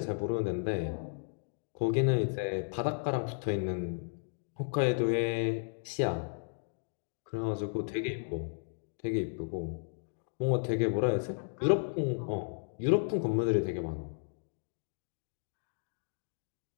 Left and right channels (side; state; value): right; silent; digital silence